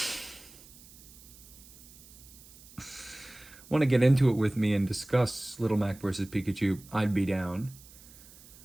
want to get into it with me and discuss Little Mac versus Pikachu, I'd be down.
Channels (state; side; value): noise; right; hiss, 21 dB below the sound